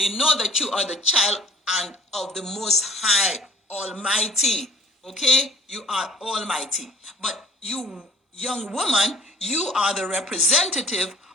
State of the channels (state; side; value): normal; both; correlation 0.51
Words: know that you are the child and of the Most High Almighty. Okay? You are almighty. But you, young woman, you are the representative